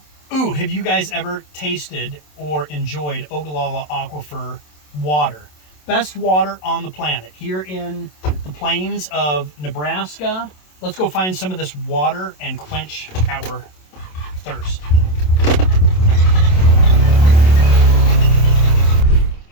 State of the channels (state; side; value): late; right; 27 ms